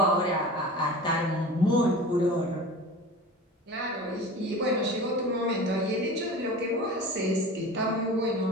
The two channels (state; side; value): normal; both; correlation 0.36